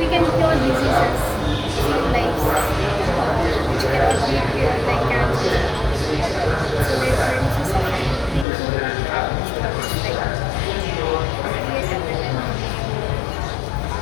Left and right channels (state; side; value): drops out; right; at 8.5 s